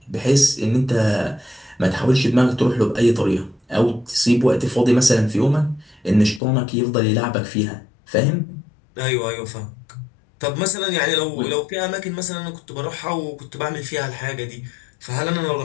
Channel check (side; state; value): right; drops out; at 6.4 s